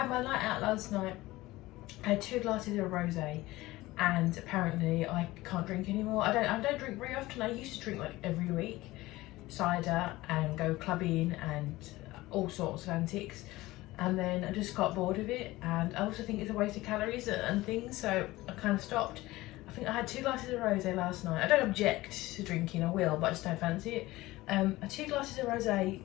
my night out last night. I had 2 glasses of rosé and apparently I can't drink anymore. I don't drink very often. I used to drink like every week, cider and go clubbing and all sorts of antics. And then I just got bored of it, and I also think it's a waste of calories and things, so I kind of stopped. I think I had 2 glasses of rosé last night. I don't object to drinking, I will, but I just don't fancy it. I had 2 glasses of rosé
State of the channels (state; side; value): quieter; right; 18.6 dB